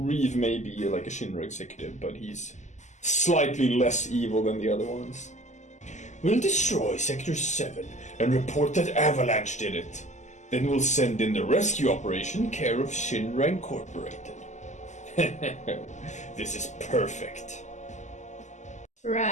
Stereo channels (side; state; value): right; late; 0.34 ms